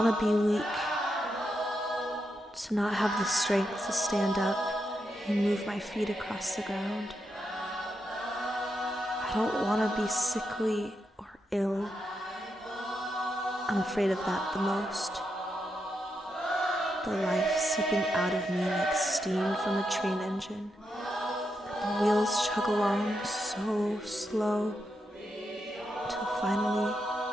be weak, to not have the strength to stand up and move my feet across the ground. I don't want to be sickly or ill. I'm afraid of that the most. The life seeping out of me like steam from a train engine. And the wheels chug along so slow until finally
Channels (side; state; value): both; normal; correlation 0.84